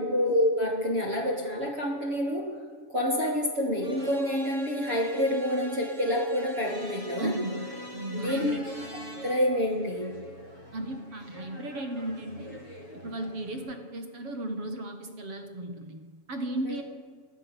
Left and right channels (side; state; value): left; late; 7.1 ms